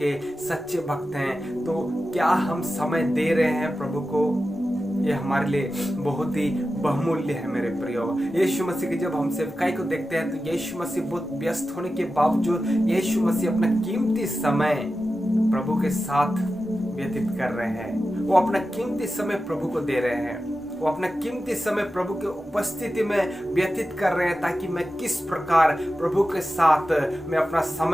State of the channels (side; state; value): both; normal; correlation 0.93